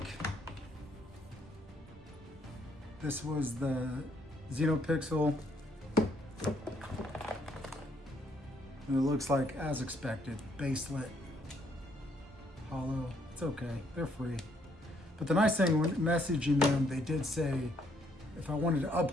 this was the Xenopixel. And it looks like, as expected, baselit, hollow. It's okay, they're free. But the nice thing when messaging them, they did say if I wanted to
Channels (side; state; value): both; normal; correlation 0.69